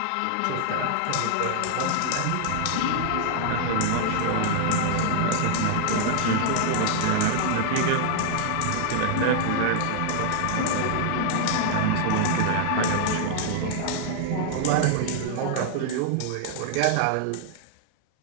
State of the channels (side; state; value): both; different; correlation -0.01